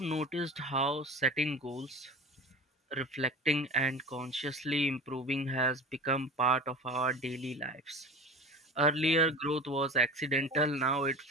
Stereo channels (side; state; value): both; normal; correlation 0.35